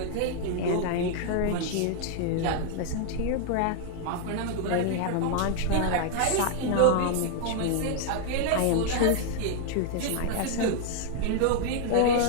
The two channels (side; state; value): both; different; correlation 0.00